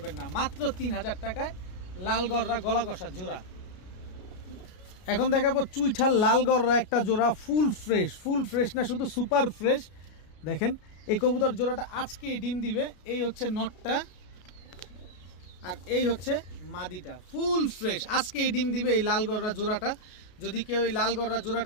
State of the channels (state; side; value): late; right; 33 ms